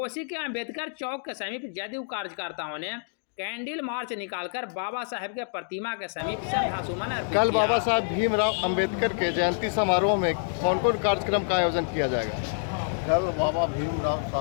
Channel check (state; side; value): silent; right; digital silence